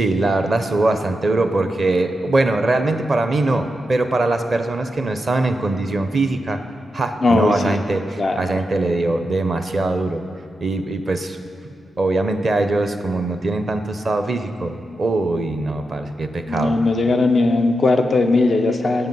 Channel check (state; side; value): normal; both; correlation 0.87